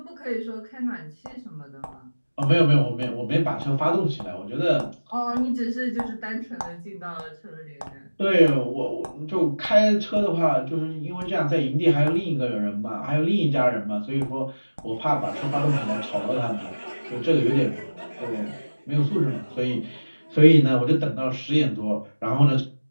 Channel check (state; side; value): inverted; both; correlation -1.00